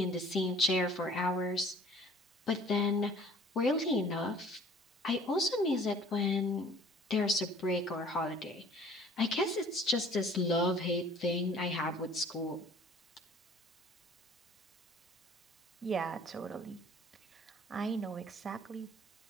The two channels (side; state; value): both; normal; correlation 0.51